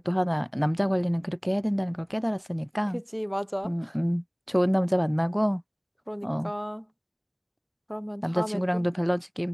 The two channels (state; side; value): identical; both; correlation 1.00